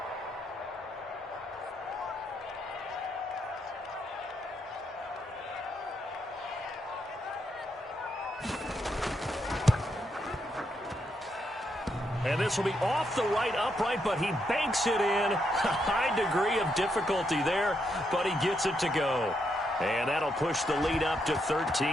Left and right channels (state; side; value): normal; both; correlation 0.79